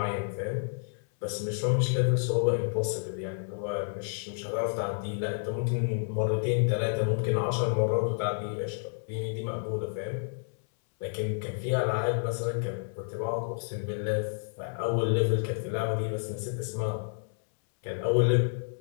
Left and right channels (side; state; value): right; silent; 58 dB below the other